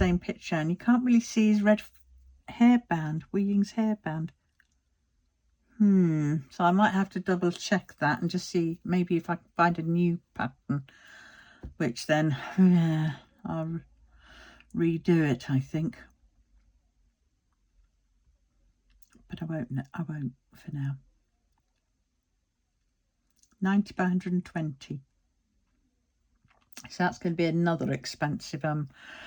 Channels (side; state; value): both; identical; correlation 1.00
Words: picture, and you can't really see his red hairband, Weeling's hairband. So I might have to double check that and just see maybe if I can find a new pattern, which then I'll redo it, I think. But I won't for now. 90 by 120. So that's going to be another expensive